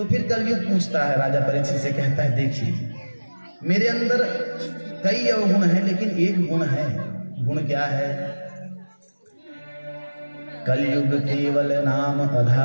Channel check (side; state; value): both; inverted; correlation -1.00